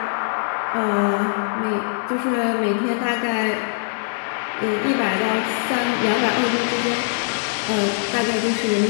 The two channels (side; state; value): right; silent; digital silence